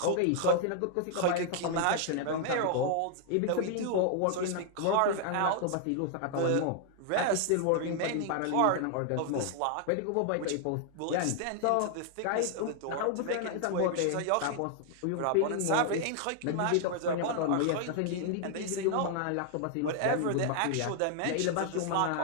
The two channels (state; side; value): different; both; correlation 0.00